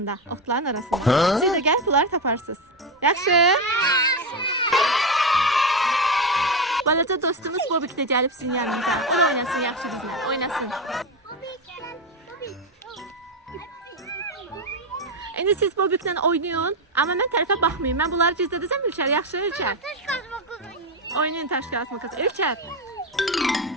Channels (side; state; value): both; normal; correlation 0.11